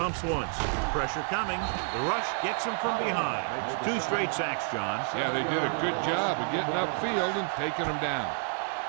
once. Pressure coming. The rush gets him from behind. 2 straight sacks, John. Yeah, they did a good job of getting upfield and taking him down.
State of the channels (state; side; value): silent; left; 55 dB below the other